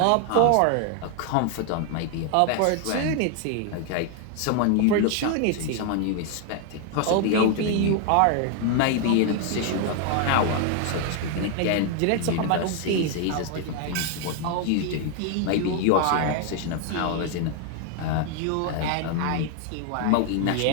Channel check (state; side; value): different; both; correlation 0.00